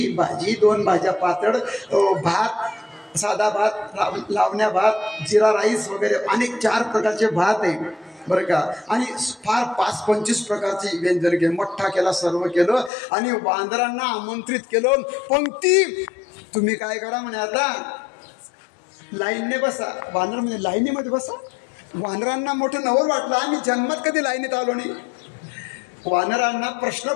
भाजी, 2 भाज्या पातळ, भात, साधा भात, लावण्या भात, जिरा राईस वगैरे अनेक 4 प्रकारचे भात आहे बरं का. आणि फार 5-25 प्रकारची व्यंजन केलं. मठ्ठा केला, सर्व केलं. आणि वानरांना आमंत्रित केलं. पंक्ती. तुम्ही काय करा म्हणे, आता लाईनने बसा. वानर म्हणजे लाईनीमध्ये बसा. वानरांना मोठं नवल वाटलं, आम्ही जन्मात कधी लाईनीत आलो नाही. वानरांना प्रश्न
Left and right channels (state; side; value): drops out; right; at 12.9 s